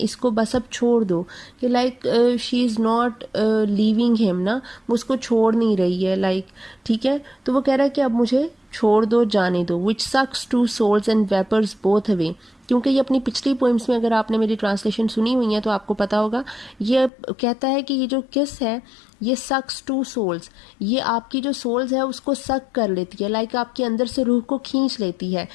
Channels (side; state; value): right; drops out; at 17.1 s